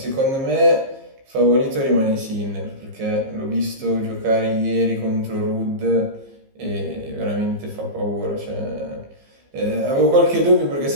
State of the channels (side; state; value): left; late; 15 ms